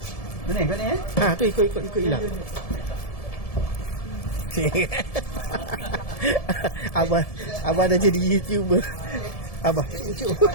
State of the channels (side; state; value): right; late; 1.7 ms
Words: Mana kau ni Tu ikut hilang. Abah dah jadi YouTuber. Abah, cucuk.